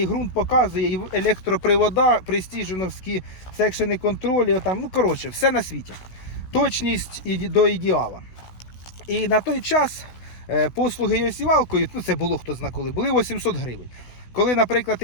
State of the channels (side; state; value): right; late; 16 ms